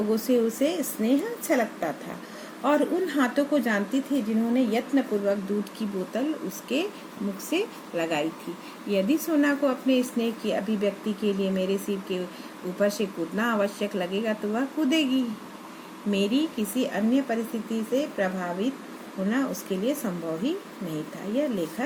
से उसे स्नेह अच्छा लगता था, और उन हाथों को जानती थी जिन्होंने यत्नपूर्वक दूध की बोतल उसके मुख से लगाई थी। यदि सोना को अपने स्नेह की अभिव्यक्ति के लिए मेरे सिर के ऊपर से कूदना आवश्यक लगेगा तो वह कूदेगी। मेरी किसी अन्य परिस्थिति से प्रभावित होना उसके लिए संभव ही नहीं था।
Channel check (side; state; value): both; identical; correlation 1.00